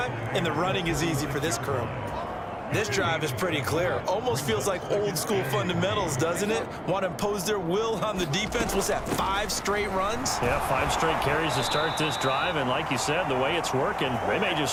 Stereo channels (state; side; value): identical; both; correlation 1.00